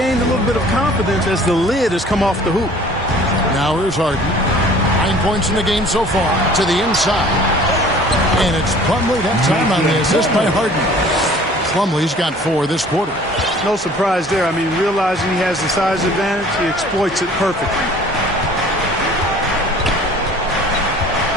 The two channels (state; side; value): normal; both; correlation 0.50